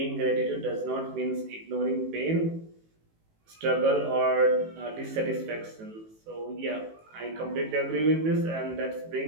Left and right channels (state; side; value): late; left; 18 ms